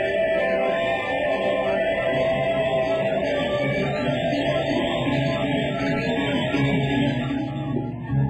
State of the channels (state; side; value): identical; both; correlation 1.00